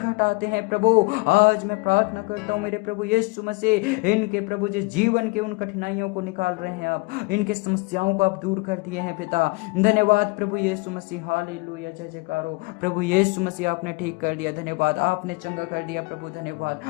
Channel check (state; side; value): quieter; right; 26.0 dB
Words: आते हैं प्रभु। आज मैं प्रार्थना करता हूं मेरे प्रभु यीशु मसीह, इनके प्रभु जी जीवन के उन कठिनाइयों को निकाल रहे हैं आप, इनके समस्याओं को आप दूर कर दिए हैं पिता। धन्यवाद प्रभु यीशु मसीह, हालेलुया, जय जयकार हो प्रभु यीशु मसीह। आपने ठीक कर दिया, धन्यवाद, आपने चंगा कर दिया प्रभु, धन्यवाद,